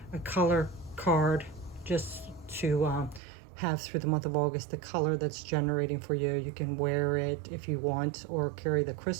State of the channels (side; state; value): left; drops out; at 3.2 s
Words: a color card just to have through the month of August the color that's generating for you. You can wear it if you want, or carry the